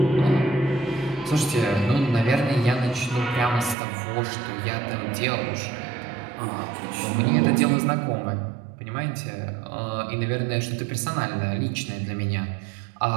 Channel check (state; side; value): drops out; left; at 3.8 s